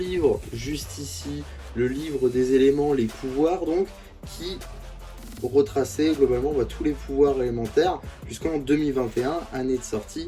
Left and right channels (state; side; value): identical; both; correlation 1.00